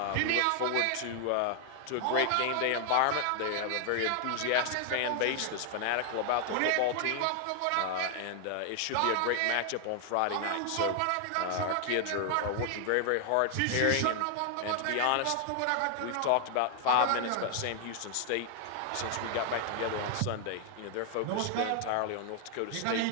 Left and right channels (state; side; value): different; both; correlation 0.00